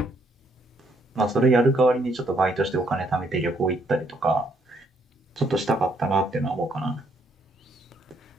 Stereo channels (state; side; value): normal; both; correlation 0.71